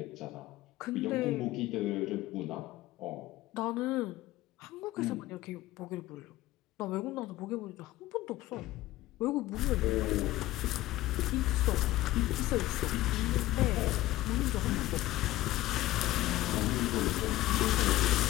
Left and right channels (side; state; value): right; quieter; 16.6 dB